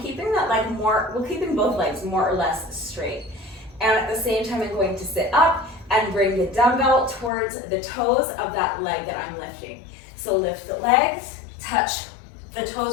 that leg keeping both legs more or less straight. And at the same time, I'm going to sit up and bring the dumbbell towards the toes of that leg that I'm lifting. So lift the legs, touch the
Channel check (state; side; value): drops out; right; at 7.3 s